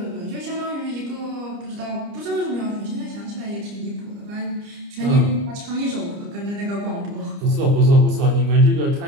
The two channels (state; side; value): late; left; 29 ms